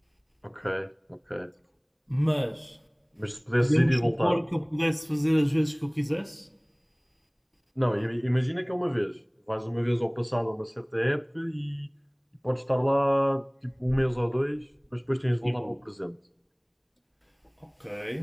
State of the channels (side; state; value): both; identical; correlation 1.00